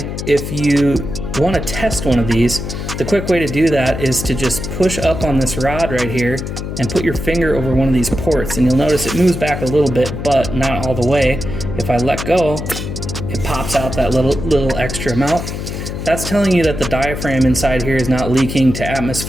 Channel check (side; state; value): left; noise; hum, 6 dB below the sound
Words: if you want to test one of these, the quick way to do that is to just push up on this rod right here and put your finger over one of these ports, and you'll notice it moves back a little bit, but not all the way. If I let go, it pops out that little extra amount. That's telling you that the diaphragm inside here is not leaking to